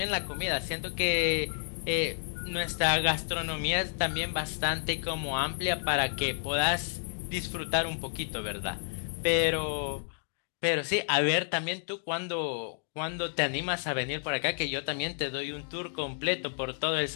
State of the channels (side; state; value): right; silent; digital silence